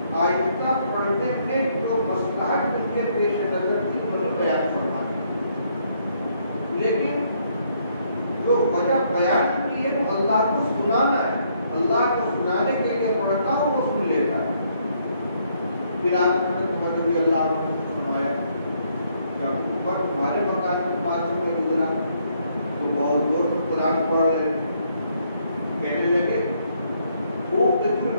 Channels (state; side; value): inverted; both; correlation -0.70